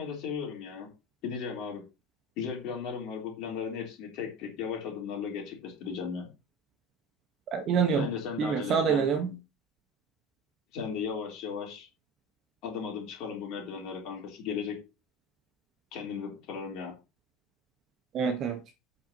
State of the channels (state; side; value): normal; both; correlation 0.33